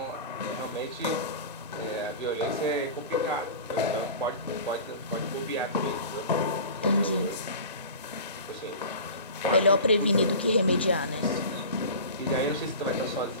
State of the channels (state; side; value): inverted; both; correlation -0.36